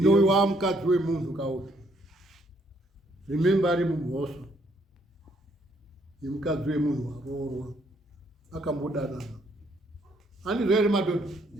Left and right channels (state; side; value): normal; both; correlation 0.69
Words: mukadzi wemunhu kauti rimemba ari mumhoso yemukadzi wemunhu waroorwa akambodanana handizvo here madhodha